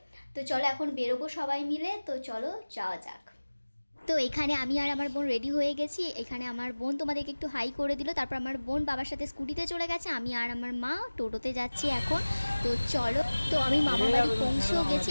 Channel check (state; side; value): inverted; both; correlation -1.00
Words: তো চলো এখন বেরোবো সবাই মিলে, তো চলো যাওয়া যাক। তো এখানে আমি আর আমার বোন রেডি হয়ে গেছি। এখানে আমার বোন তোমাদেরকে একটু হাই করে দিল, তারপর আমার বোন বাবার সাথে স্কুটিতে চলে গেছে, আমি আর আমার মা টোটোতে যাচ্ছি এখন। তো চলো, তো আমি মামা বাড়ি পৌঁছেও গেছি।